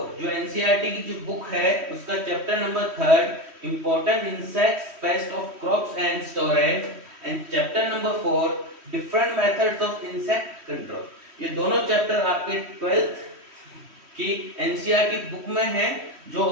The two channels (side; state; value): left; late; 3.1 ms